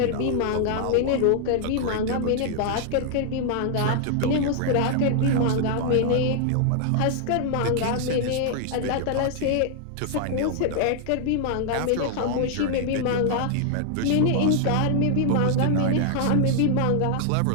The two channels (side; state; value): both; different; correlation -0.01